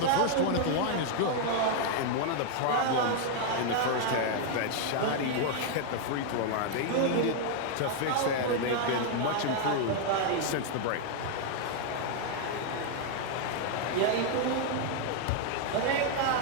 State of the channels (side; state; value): both; different; correlation 0.00